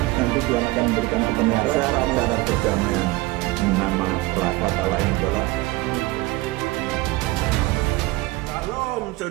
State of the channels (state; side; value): quieter; left; 20.7 dB